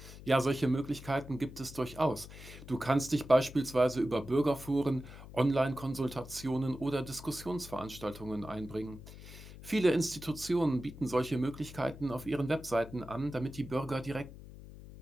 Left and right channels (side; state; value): left; noise; hum, 15 dB below the sound